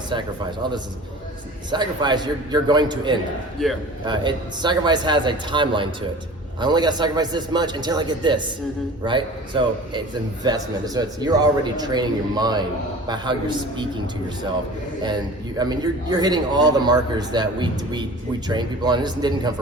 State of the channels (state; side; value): normal; both; correlation 0.41